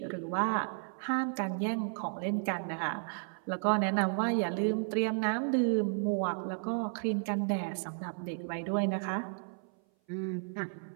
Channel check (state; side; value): silent; left; 56 dB below the other